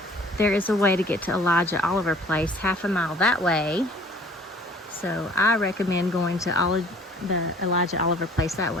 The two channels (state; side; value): normal; both; correlation 0.52